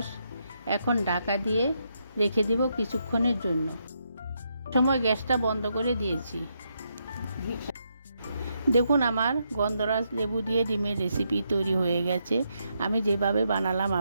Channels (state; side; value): inverted; both; correlation -0.80